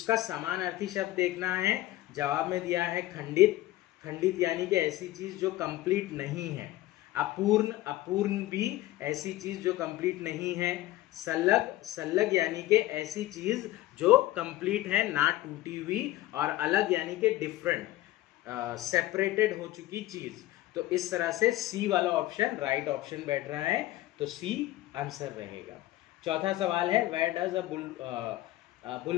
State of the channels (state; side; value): quieter; right; 16.2 dB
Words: समानार्थी शब्द देखना है। जवाब में दिया है खंडित। खंडित यानी कि ऐसी चीज जो कंप्लीट नहीं है। अपूर्ण, अपूर्ण भी ऐसी चीज जो कंप्लीट नहीं है। सल्लग, सल्लग यानी कि ऐसी चीज जो कंप्लीट है, ना टूटी हुई। और अलग यानी कि डिफरेंट, सेपरेटेड हो चुकी चीज। तो इस तरह से सी वाला ऑप्शन राइट ऑप्शन बैठ रहा है, तो सी आंसर रहेगा। चौथा सवाल है वेयर डज